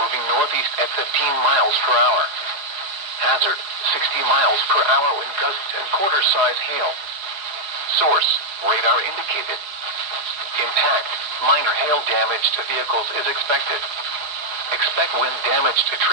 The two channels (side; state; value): left; late; 4.6 ms